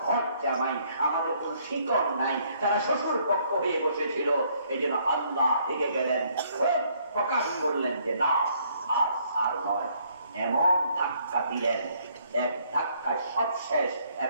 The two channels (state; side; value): inverted; both; correlation -0.66